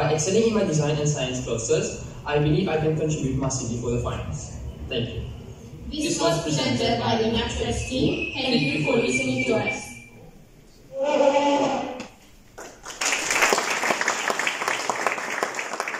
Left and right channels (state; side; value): identical; both; correlation 1.00